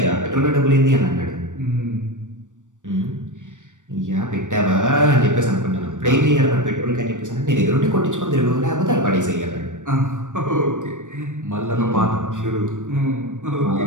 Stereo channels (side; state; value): left; late; 0.86 ms